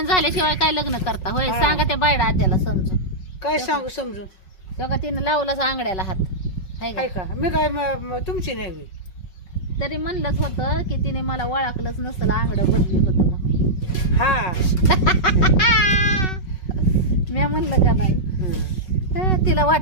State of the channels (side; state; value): right; late; 5.4 ms